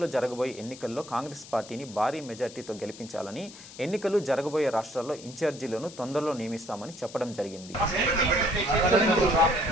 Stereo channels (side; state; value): left; noise; hiss, 17 dB below the sound